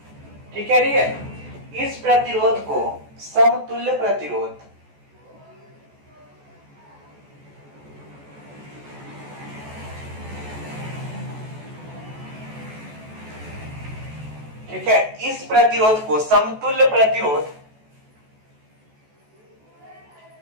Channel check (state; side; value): late; left; 14 ms